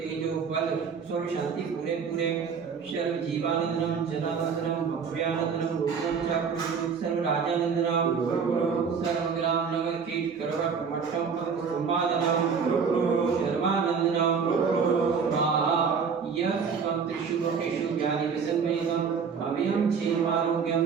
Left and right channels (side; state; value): left; quieter; 6.0 dB